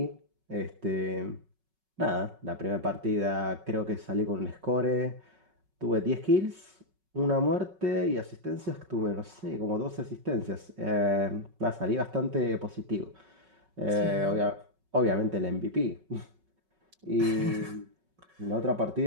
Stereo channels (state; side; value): late; left; 5.4 ms